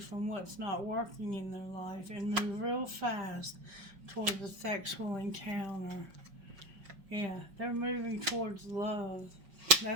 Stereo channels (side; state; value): left; late; 5.5 ms